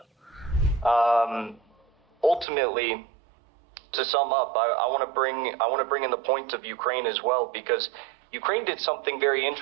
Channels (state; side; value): drops out; left; at 2.5 s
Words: Ultimately, to sum up, I want to bring in the point of Ukraine as well, because Ukraine did something very